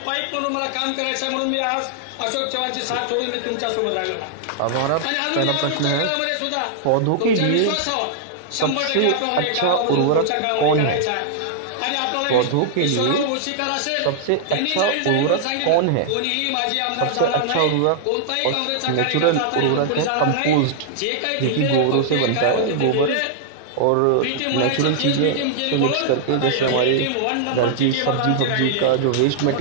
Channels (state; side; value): different; both; correlation -0.01